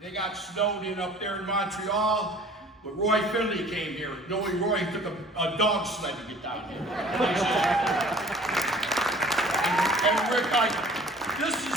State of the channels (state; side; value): normal; both; correlation 0.50